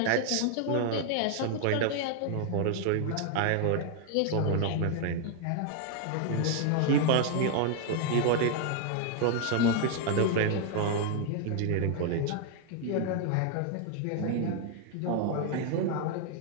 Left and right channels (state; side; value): different; both; correlation 0.00